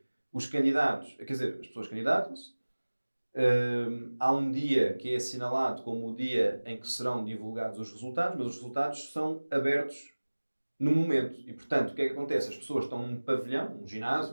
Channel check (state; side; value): inverted; both; correlation -1.00